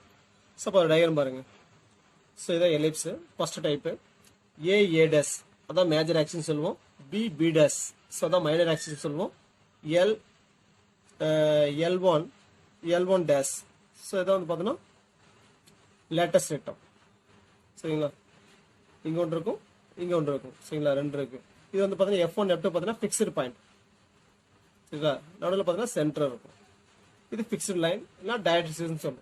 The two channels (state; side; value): identical; both; correlation 1.00